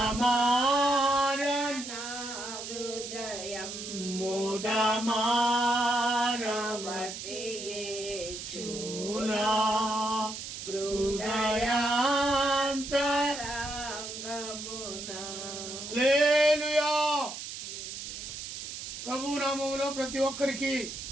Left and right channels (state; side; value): noise; right; hiss, 8 dB below the sound